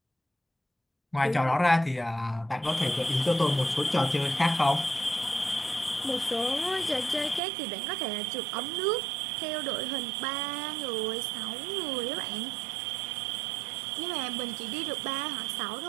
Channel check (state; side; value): drops out; left; at 7.4 s